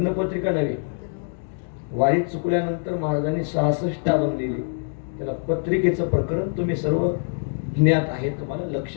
पत्रिका नव्हे. वारी चुकल्यानंतर महाराजांनी 66 अभंग दिले. त्याला पत्रिकेचं प्रकरण तुम्ही सर्व ज्ञात आहे, तुम्हाला लक्ष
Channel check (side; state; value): right; silent; digital silence